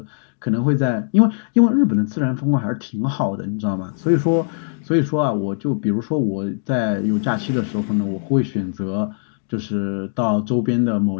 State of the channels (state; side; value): silent; right; 65 dB below the other